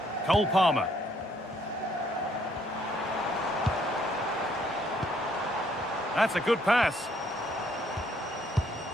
Cole Palmer. That's a good pass.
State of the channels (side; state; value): both; normal; correlation 0.67